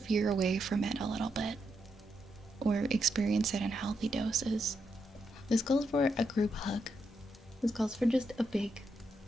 away from it a little bit or experience it in healthy doses. This calls for a group hug. This calls for just a big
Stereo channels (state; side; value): normal; both; correlation 0.81